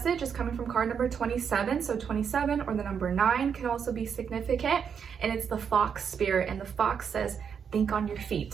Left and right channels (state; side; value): quieter; left; 7.1 dB